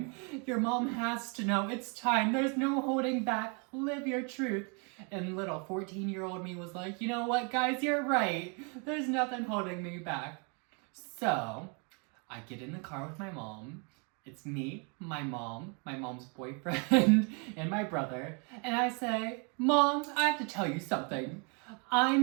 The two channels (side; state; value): left; quieter; 35.4 dB